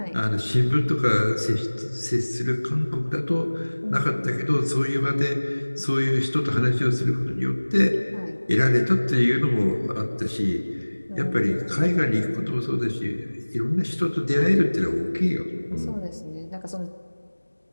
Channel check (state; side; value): inverted; both; correlation -1.00